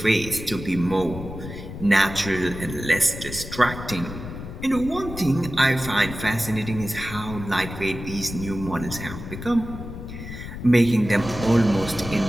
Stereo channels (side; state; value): left; noise; rumble, 10 dB below the sound